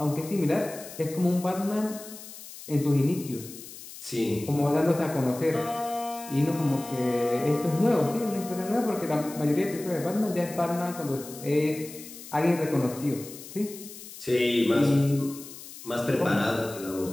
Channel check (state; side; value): noise; left; hiss, 15 dB below the sound